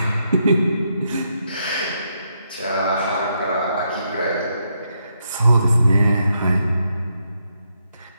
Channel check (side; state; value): both; inverted; correlation -0.80